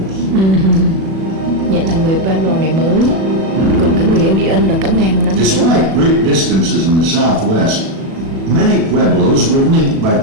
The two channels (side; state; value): left; late; 36 ms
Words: Vậy là người Pueblo này mới, còn cái người Indian là cả ngàn năm trước. Despite great distances in the southwest, many pueblos were linked by